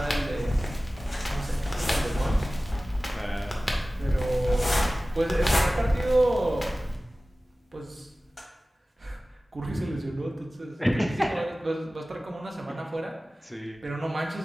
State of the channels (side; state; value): both; normal; correlation 0.97